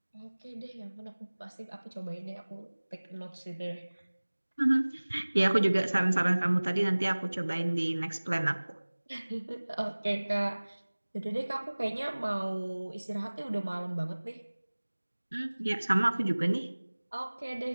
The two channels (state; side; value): inverted; both; correlation -1.00